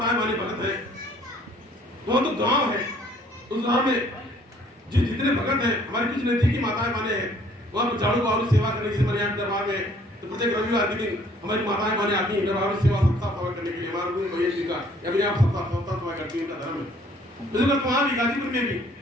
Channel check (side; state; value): both; normal; correlation 0.59